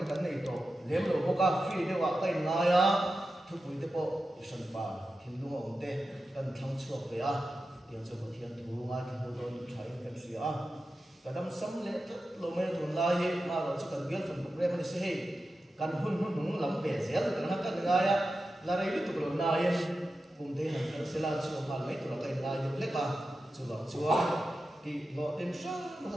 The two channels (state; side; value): normal; both; correlation 0.92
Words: cái này to lem lo ko ka free de wa kai nga ya thu pui te po san pa hin lu ngom te kan thang chuak ve a tiang chu ko thian thu nga ki ho don thai kan sia a kadam sam le lo me thun la hi ma ro chu kan bial fan program ni se he kan hun hun lam ve zel kan ha kan nga ya la rei tu lo na yen kum te han kan sela chu ma mai tu la kai la yu le ka chu lo chu ki lo tem sa ma